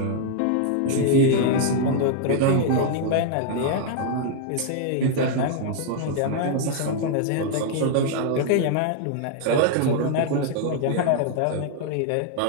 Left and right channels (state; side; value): different; both; correlation 0.00